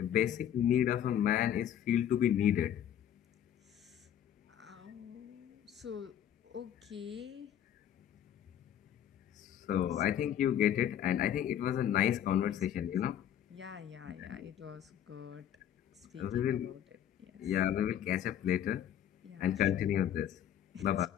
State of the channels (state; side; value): quieter; right; 10.3 dB